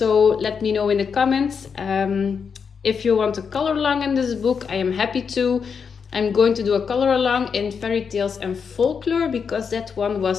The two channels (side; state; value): right; quieter; 6.2 dB